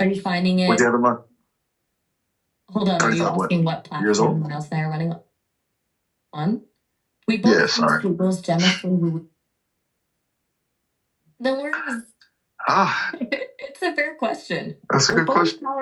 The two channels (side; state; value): both; identical; correlation 1.00